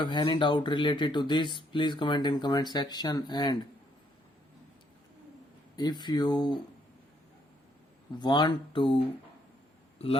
any doubt related to this, please comment in comment section, and if you want to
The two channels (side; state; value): both; normal; correlation 0.70